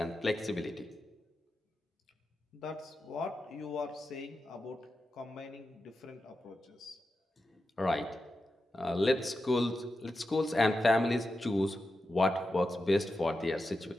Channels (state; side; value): normal; both; correlation 0.90